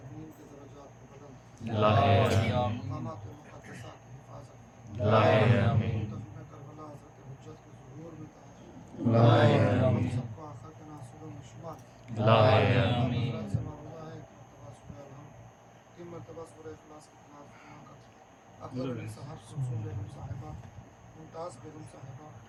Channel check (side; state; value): both; identical; correlation 1.00